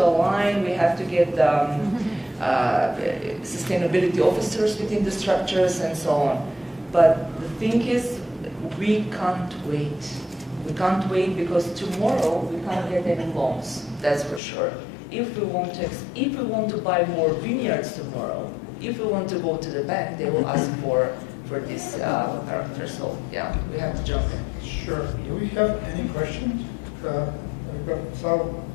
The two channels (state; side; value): drops out; right; at 14.4 s